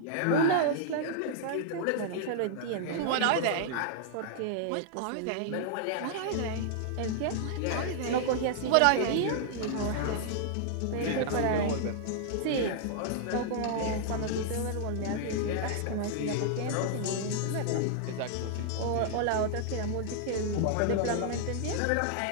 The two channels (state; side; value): different; both; correlation -0.01